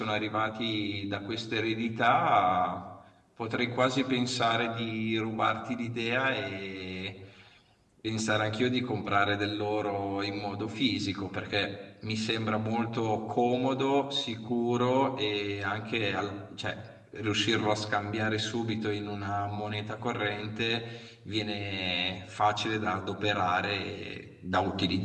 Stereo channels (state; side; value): identical; both; correlation 1.00